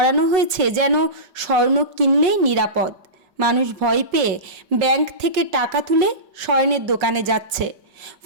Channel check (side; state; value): left; late; 5.4 ms